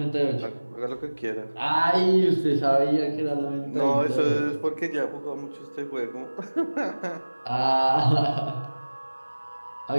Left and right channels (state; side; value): inverted; both; correlation -1.00